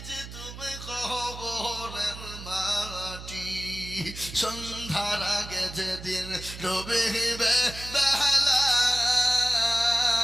তুমি কবরের মাটি, সন্ধ্যার আগে যেদিন ডুবিবে বেলা,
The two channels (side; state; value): right; noise; hum, 12 dB below the sound